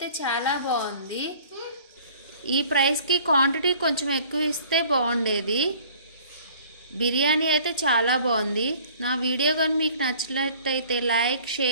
చాలా బాగుంది. ఈ ప్రైస్కి క్వాంటిటీ కొంచెం ఎక్కువ ఇస్తే బాగుండేది. బిర్యానీ అయితే చాలా బాగుంది. నా వీడియో కానీ మీకు నచ్చినట్లయితే like,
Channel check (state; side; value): inverted; both; correlation -0.51